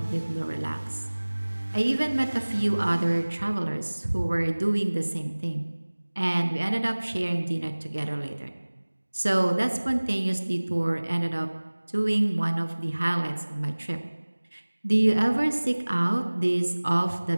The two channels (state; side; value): inverted; both; correlation -1.00